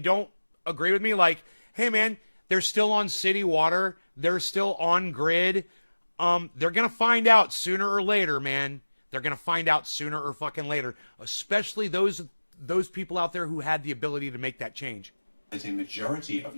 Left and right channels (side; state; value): both; inverted; correlation -1.00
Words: don't agree with me, like, hey man, they're still on city water, they're still on grid. They're gonna find out sooner or later, man. They're gonna find out sooner or fucking later. Especially those people out there who had the ability to make that change. That a majority of